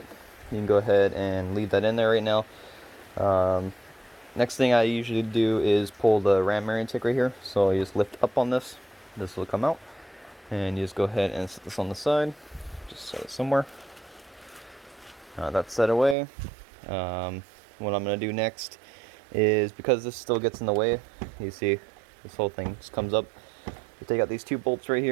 You can go ahead and leave that in there right now. Next thing I usually do is pull the ram air intake right here. So you just lift up on this. This will come out. And you just go ahead and set this on the side. Just set it somewhere. That's set away. What I'm going to do next is, because this still gets in the way, you see this whole thing just comes up. You take out these two bolts right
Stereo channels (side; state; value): left; drops out; at 16.2 s